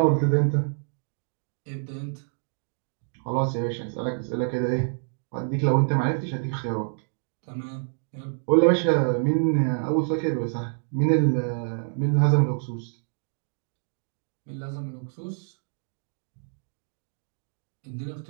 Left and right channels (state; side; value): silent; left; digital silence